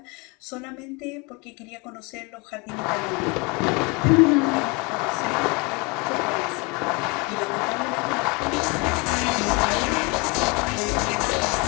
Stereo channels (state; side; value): quieter; right; 28.9 dB